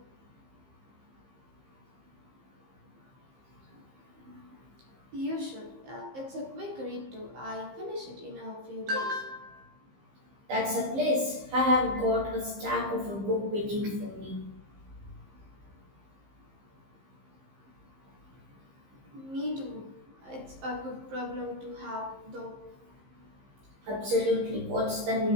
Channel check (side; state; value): left; late; 15 ms